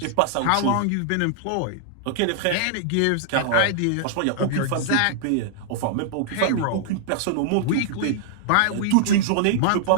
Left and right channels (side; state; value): both; different; correlation -0.01